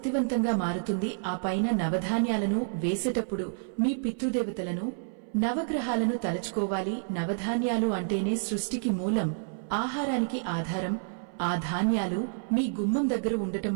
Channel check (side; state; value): left; silent; 58 dB below the other